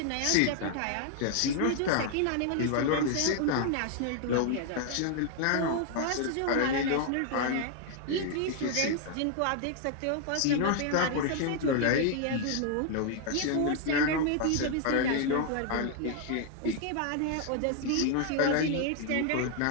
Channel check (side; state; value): both; different; correlation 0.00